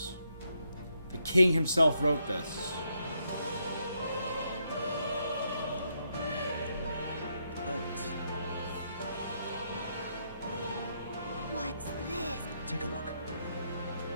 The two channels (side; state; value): both; inverted; correlation -0.78